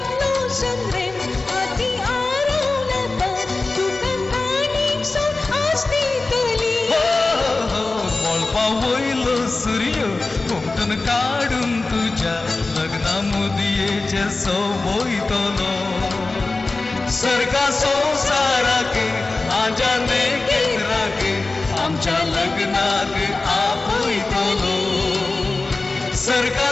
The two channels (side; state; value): right; quieter; 3.4 dB